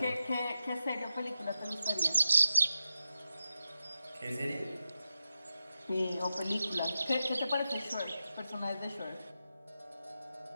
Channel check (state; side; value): inverted; both; correlation -0.91